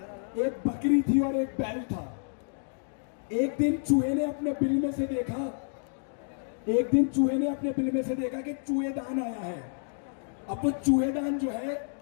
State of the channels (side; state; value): right; silent; digital silence